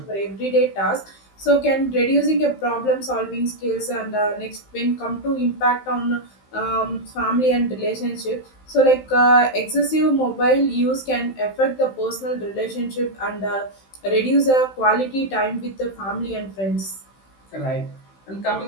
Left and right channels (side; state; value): right; late; 15 ms